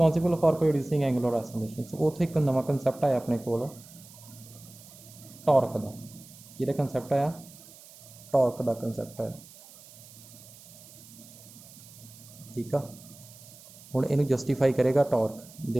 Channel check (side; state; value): right; noise; hiss, 20 dB below the sound